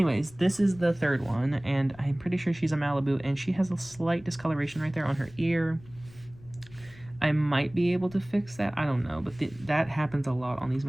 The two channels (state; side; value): noise; left; rumble, 22 dB below the sound